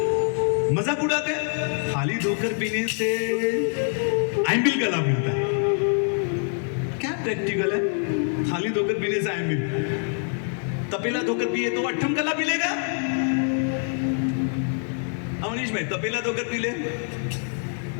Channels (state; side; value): silent; right; 56 dB below the other